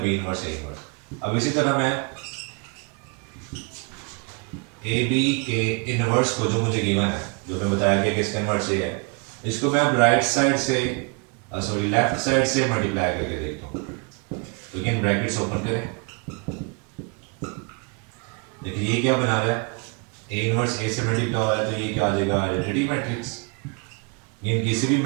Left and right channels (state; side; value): quieter; left; 34.0 dB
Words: बी इनवर्स ए इनवर्स। अब इसी तरह मैं ए बी के इनवर्स को जो मुझे गिवन है, जो मैं बताया कि इसका इनवर्स ये है, इसको मैं अब राइट साइड से सॉरी लेफ्ट साइड से मल्टीप्लाई करके देखता हूँ। तो अगेन ब्रैकेट्स ओपन करें, देखिए ये क्या बना रहा है, ए इनवर्स ए से मल्टीप्लाई हो रहा है तो ये क्या आ जाएगा आइडेंटिटी मैट्रिक्स। ये किसी भी